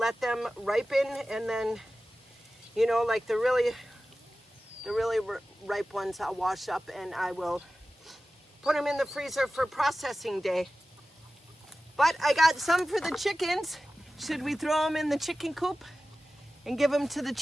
them ripen, and then, you know, like the really ripe ones I'll wash up and I will put them in the freezer for processing day. But I got some for the chickens. Should we throw them in the chicken coop and give them to the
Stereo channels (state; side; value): normal; both; correlation 0.95